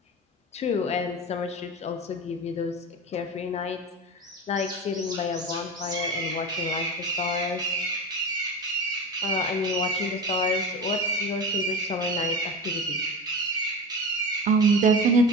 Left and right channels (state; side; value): normal; both; correlation 0.27